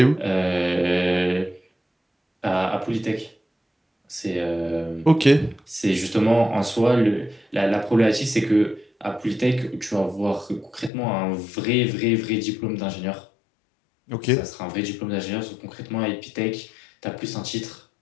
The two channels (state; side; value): drops out; right; at 10.9 s